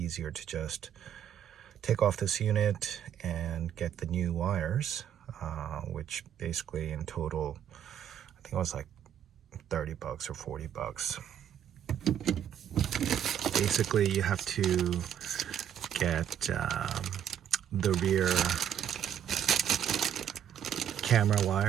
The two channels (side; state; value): left; quieter; 9.6 dB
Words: to just take off this unit and get the new wires, which basically in total, I think it was like 30 bucks or 40 bucks. Basically, you have to get the rear camera